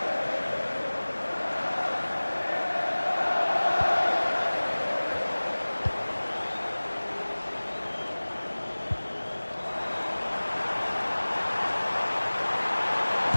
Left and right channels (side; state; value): both; inverted; correlation -1.00